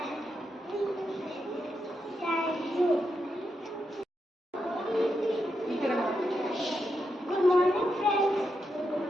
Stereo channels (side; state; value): both; normal; correlation 0.84